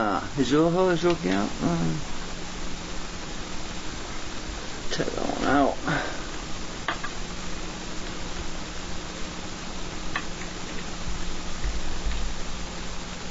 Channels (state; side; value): identical; both; correlation 1.00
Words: Is the hole is looking out? Take that one out.